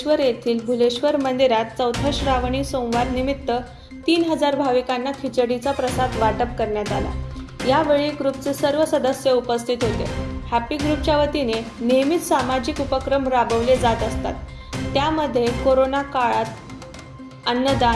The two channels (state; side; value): identical; both; correlation 1.00